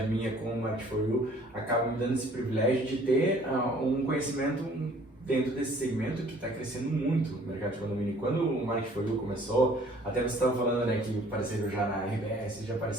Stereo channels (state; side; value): normal; both; correlation 0.55